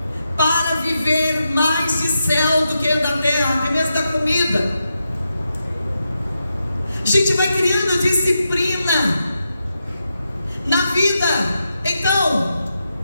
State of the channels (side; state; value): both; inverted; correlation -0.87